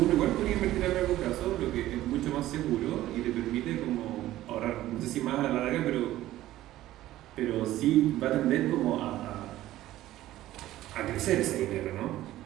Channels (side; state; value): left; quieter; 14.8 dB